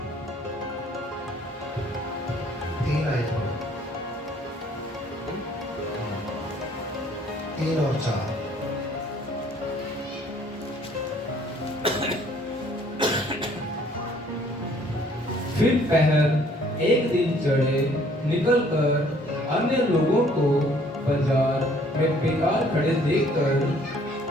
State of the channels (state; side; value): normal; both; correlation 0.59